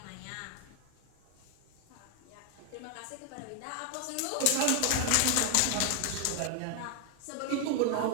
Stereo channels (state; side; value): different; both; correlation 0.01